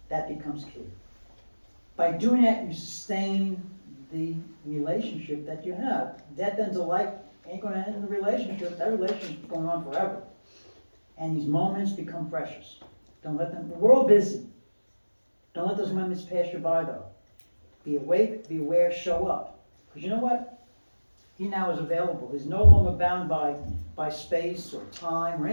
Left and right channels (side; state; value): both; inverted; correlation -1.00